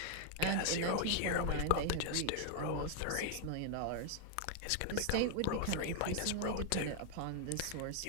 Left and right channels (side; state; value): both; different; correlation 0.00